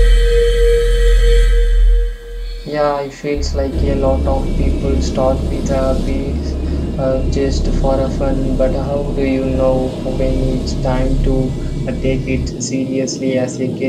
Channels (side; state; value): both; identical; correlation 1.00